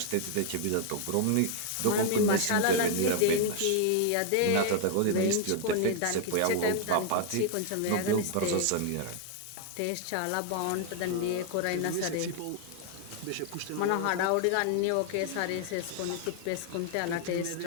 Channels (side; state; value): both; different; correlation 0.00